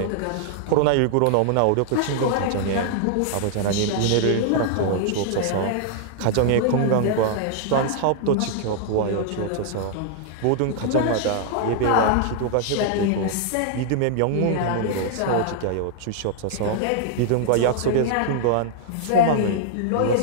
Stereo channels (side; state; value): both; different; correlation -0.01